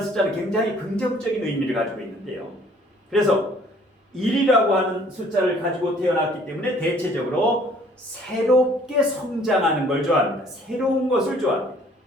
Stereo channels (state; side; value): normal; both; correlation 0.57